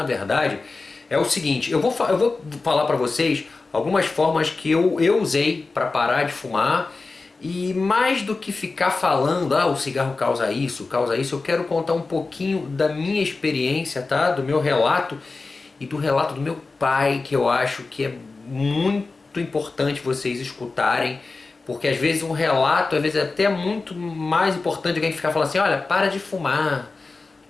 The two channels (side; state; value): right; quieter; 3.8 dB